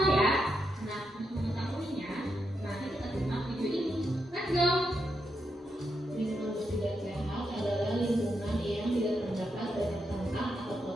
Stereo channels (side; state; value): both; normal; correlation 0.83